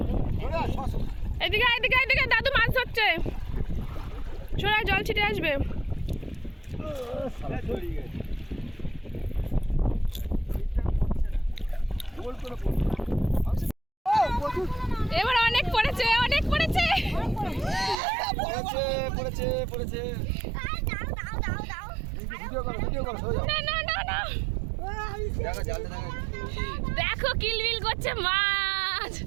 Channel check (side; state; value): left; drops out; at 17.9 s